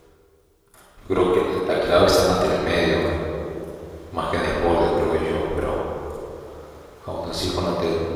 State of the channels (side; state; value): both; identical; correlation 1.00